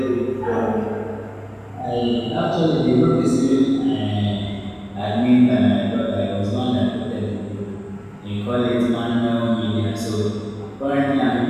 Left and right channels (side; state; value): both; identical; correlation 1.00